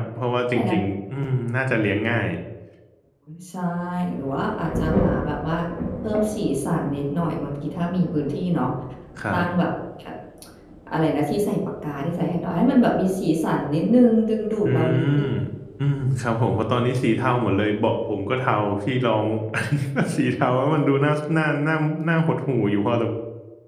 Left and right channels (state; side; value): identical; both; correlation 1.00